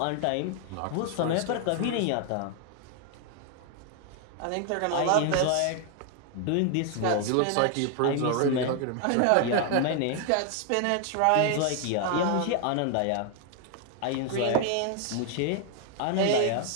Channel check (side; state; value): both; different; correlation 0.00